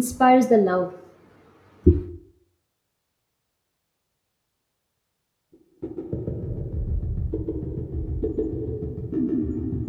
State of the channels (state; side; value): identical; both; correlation 1.00